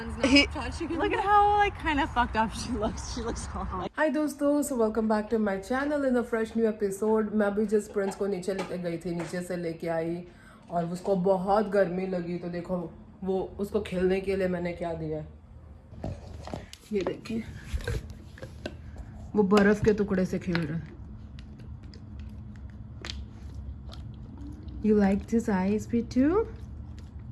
not He- touching. Look at how like kind of fucked up she looks. She looks all like. Hi दोस्तों, so welcome back to my channel in a fresh new episode. मैं भी जिस Prince को नीचे लेके गई थी, नीचे से लेके आई और उसको बहुत गर्मी लगी, तो देखो वो उसको खेलने के लिए मैंने क्या दिया है, ये देखिए, वो बर्फ के टुकड़े से खेल रहा है. You like this ice too?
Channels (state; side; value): identical; both; correlation 1.00